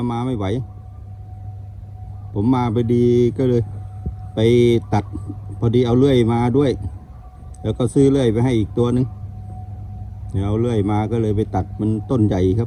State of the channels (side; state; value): both; identical; correlation 1.00